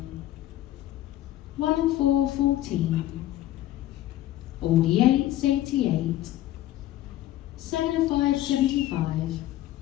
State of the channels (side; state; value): right; quieter; 14.1 dB